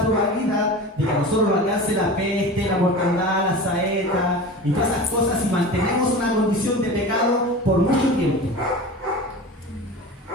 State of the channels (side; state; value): both; normal; correlation 0.33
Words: probabilidad de que a nosotros nos alcance la peste, la mortandad, la saeta y todas esas cosas si mantenemos una condición de pecado por mucho tiempo.